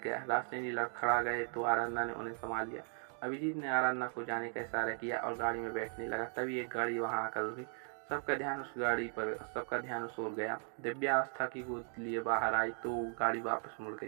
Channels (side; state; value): left; silent; 53 dB below the other